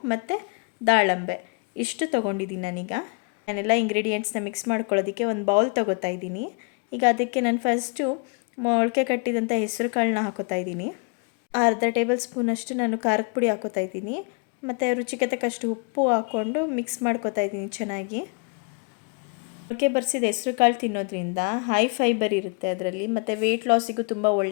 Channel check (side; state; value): right; quieter; 34.7 dB